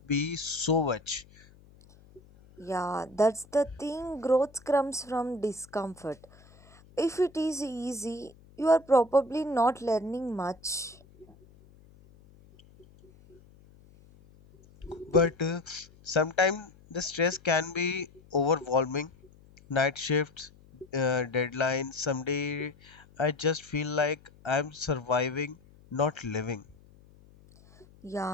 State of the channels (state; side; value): noise; left; hum, 25 dB below the sound